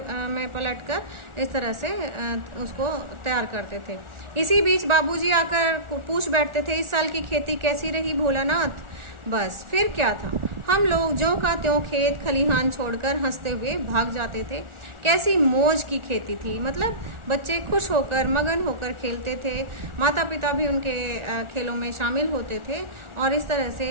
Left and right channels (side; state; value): left; late; 1.4 ms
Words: में पलटकर इस तरह से उसको तैयार करते थे। इसी बीच बाबूजी आकर पूछ बैठते थे, इस साल की खेती कैसी रही भोलानाथ? बस फिर क्या था, हम लोग ज्यों का त्यों खेत खलिहान छोड़कर हंसते हुए भाग जाते थे। कैसी मौज की खेती थी, मतलब बच्चे खुश होकर, मगन होकर खेलते थे। माता पिता भी उनके खेलों में शामिल होते थे और इस तरह